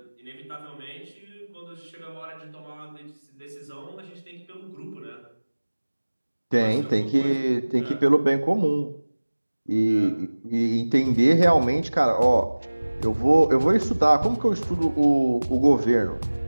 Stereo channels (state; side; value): inverted; both; correlation -1.00